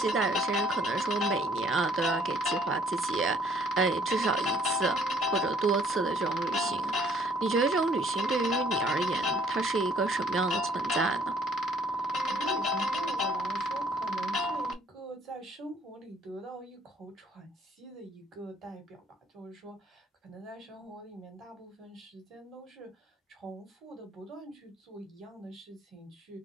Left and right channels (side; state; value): both; normal; correlation 0.60